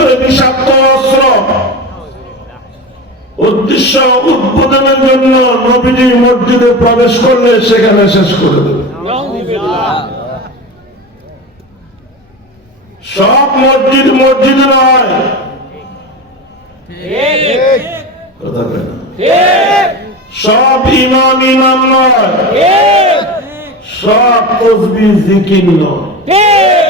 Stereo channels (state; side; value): normal; both; correlation 0.25